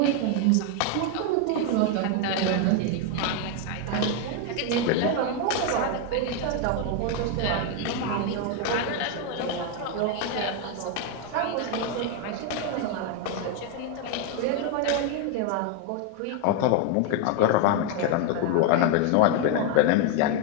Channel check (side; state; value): both; different; correlation 0.01